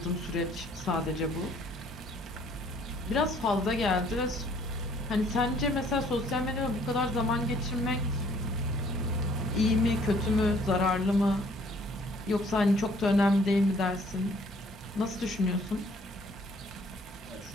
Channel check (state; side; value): normal; both; correlation 0.60